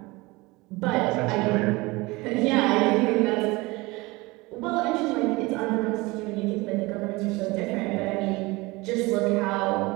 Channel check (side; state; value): left; quieter; 22.8 dB